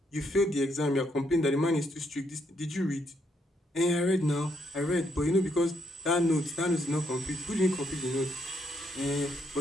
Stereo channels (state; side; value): normal; both; correlation 0.75